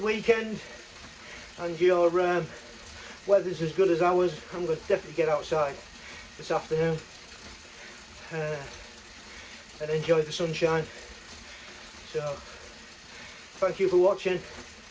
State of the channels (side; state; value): both; identical; correlation 1.00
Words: weekend and your weather's as good as ours. I'm going to definitely get outside this afternoon and enjoy the sunshine. So thank you for watching.